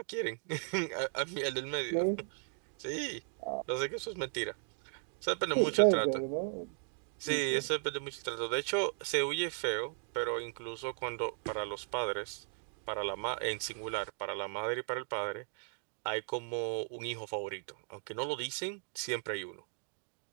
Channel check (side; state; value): left; silent; 53 dB below the other